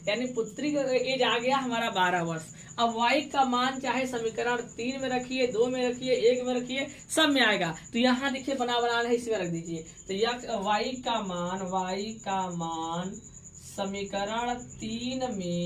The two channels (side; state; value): both; identical; correlation 1.00